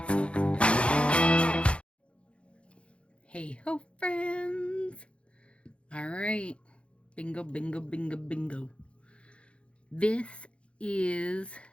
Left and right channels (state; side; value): late; right; 0.059 ms